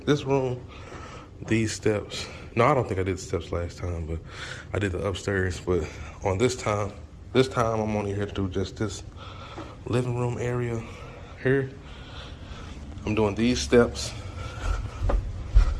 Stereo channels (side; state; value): both; identical; correlation 1.00